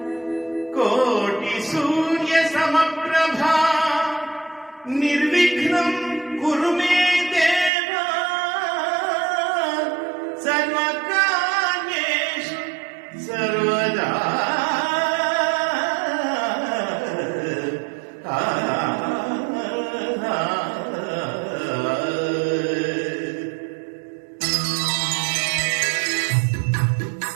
కోటి సూర్య సమప్రభా నిర్విఘ్నం కురు మే దేవా సర్వకార్యేషు సర్వదా.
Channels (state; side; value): drops out; left; at 7.7 s